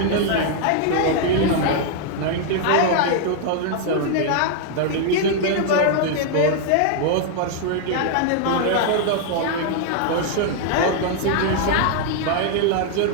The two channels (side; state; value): both; different; correlation 0.00